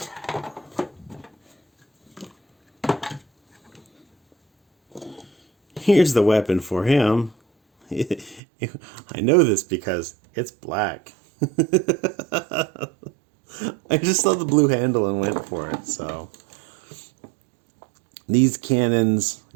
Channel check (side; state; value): left; drops out; at 8.4 s